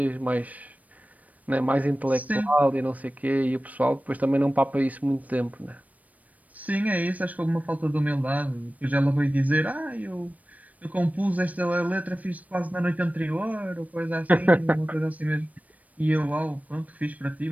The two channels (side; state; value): left; late; 0.072 ms